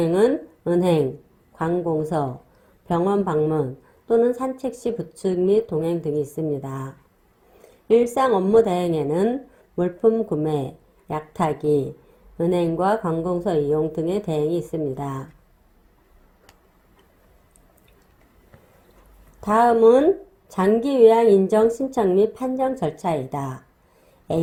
은행, 관공서, 병원 방문 또는 산책 시 부축 및 동행 등이 있습니다. 일상 업무 대행에는 물품 구매, 약 타기, 은행과 관공서 이용 등의 대행이 있습니다. 다음은 장기 요양 인정 신청 및 판정 절차이다.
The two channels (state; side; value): identical; both; correlation 1.00